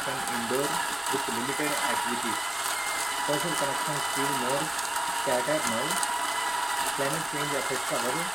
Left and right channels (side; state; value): right; noise; rumble, 26 dB below the sound